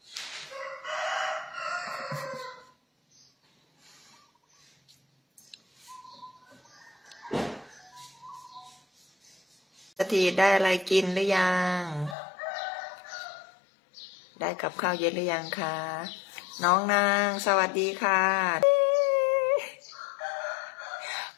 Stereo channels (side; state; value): right; drops out; at 12.2 s